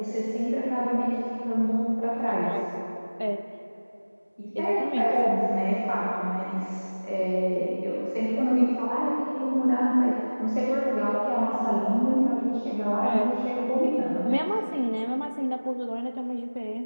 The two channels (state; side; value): inverted; both; correlation -1.00